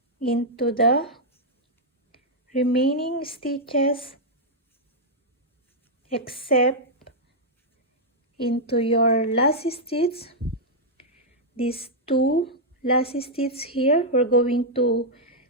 into the remaining stitches except into your last stitch. These 2 last stitches here, we're going to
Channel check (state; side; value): normal; both; correlation -0.06